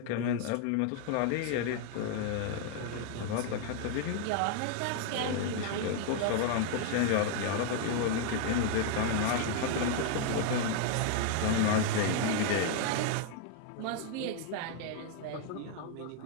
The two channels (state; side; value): different; both; correlation 0.00